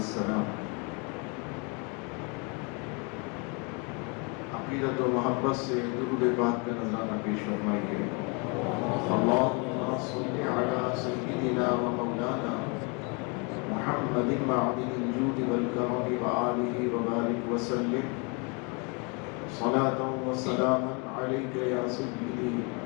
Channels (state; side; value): quieter; right; 32.6 dB